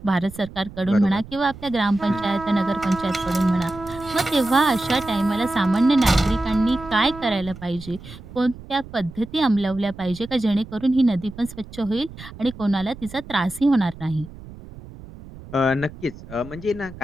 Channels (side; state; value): right; noise; rumble, 16 dB below the sound